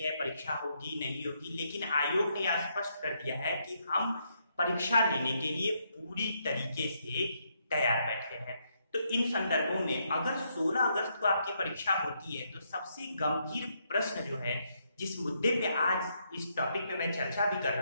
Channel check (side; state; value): both; inverted; correlation -0.76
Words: है, परीक्षा होगी नहीं होगी, लेकिन आयोग ने स्पष्ट कर दिया है कि हम परीक्षा लेने के लिए पूरी तरीके से तैयार बैठे हैं। तो इन संदर्भों में अगर 16 अगस्त को आपकी परीक्षा होती है तो सबसे गंभीर प्रश्न जो है, जिस मुद्दे पे आज इस टॉपिक में मैं चर्चा भी कर